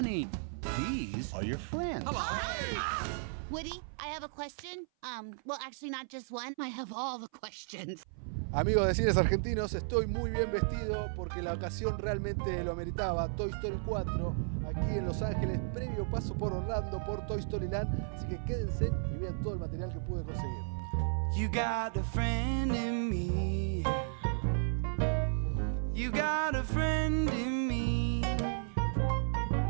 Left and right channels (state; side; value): silent; left; 55 dB below the other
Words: These are your friends. Hello. Woody, I have a question. Well, actually not just one. I have all the questions. Amigos de cines argentinos, estoy muy bien vestido porque la ocasión realmente lo ameritaba. Toy Story 4, aquí en Los Ángeles, previo paso por Orlando, por Toy Story Land. Así que quédense y vean todo el material que pude conseguir. You got a friend in me. You got a friend in me.